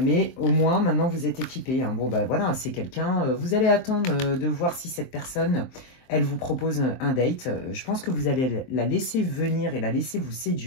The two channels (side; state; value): right; late; 23 ms